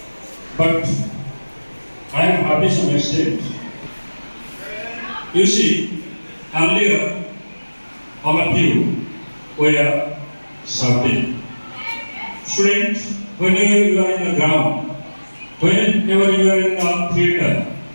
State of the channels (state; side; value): inverted; both; correlation -1.00